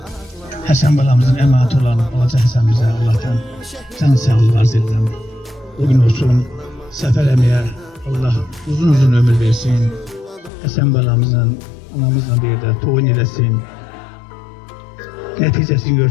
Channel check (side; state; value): right; drops out; at 10.5 s